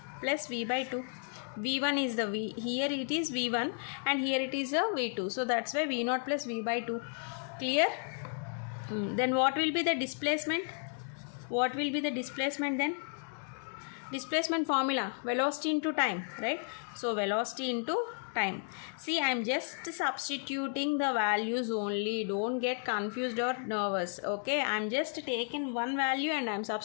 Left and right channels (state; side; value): silent; right; 56 dB below the other